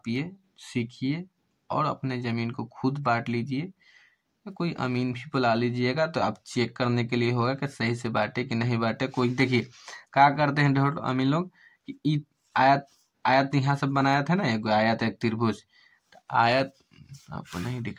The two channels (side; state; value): both; identical; correlation 1.00